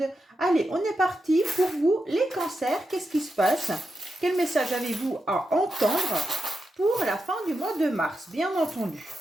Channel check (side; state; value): both; normal; correlation 0.88